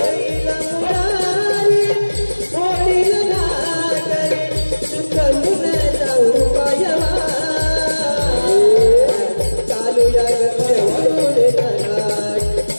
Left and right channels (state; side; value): inverted; both; correlation -1.00